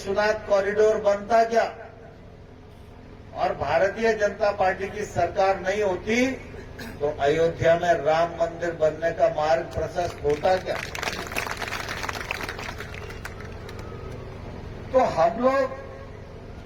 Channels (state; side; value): identical; both; correlation 1.00